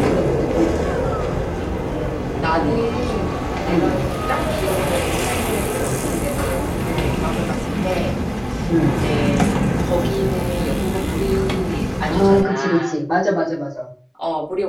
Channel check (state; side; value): identical; both; correlation 1.00